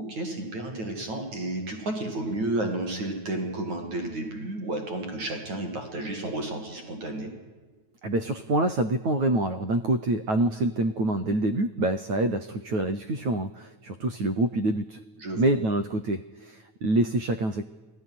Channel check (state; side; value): late; left; 9.3 ms